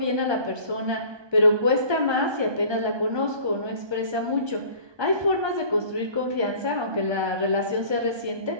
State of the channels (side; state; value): left; late; 1.2 ms